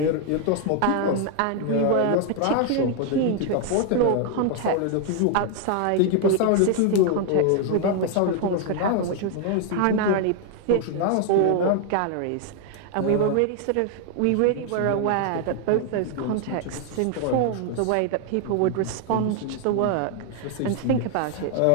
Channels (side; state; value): both; different; correlation 0.00